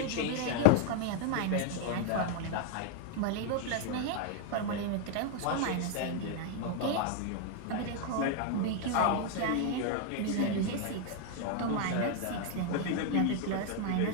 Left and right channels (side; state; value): both; different; correlation 0.00